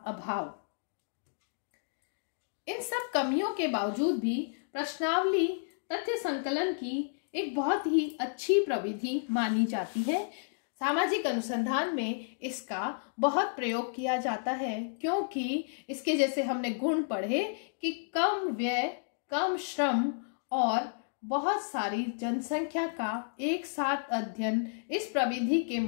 अभाव। इन सब कमियों के बावजूद भी प्रश्नावली तथ्य संकलन की एक बहुत ही अच्छी प्रविधि मानी जाती है। सामाजिक अनुसंधान में इसका बहुत प्रयोग किया जाता है, क्योंकि इसके जैसे हमने गुण पढ़े कि कम व्यय, कम श्रम और बहुत सारी जनसंख्या का एक साथ अध्ययन इस प्रविधि के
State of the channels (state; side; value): silent; right; digital silence